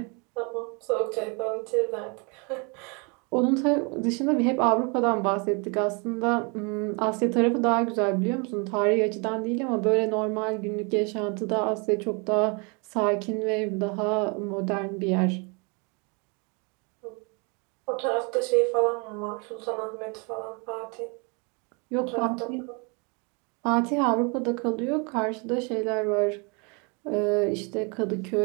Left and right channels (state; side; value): quieter; left; 32.5 dB